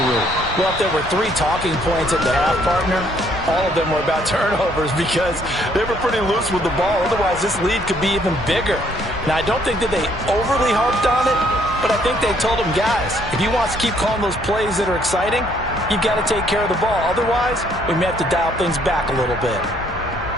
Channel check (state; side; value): normal; both; correlation 0.66